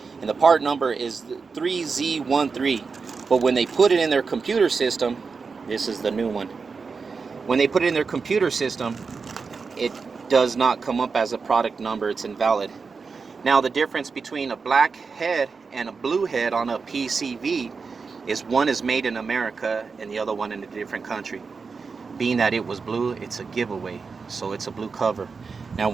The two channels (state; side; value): quieter; left; 4.9 dB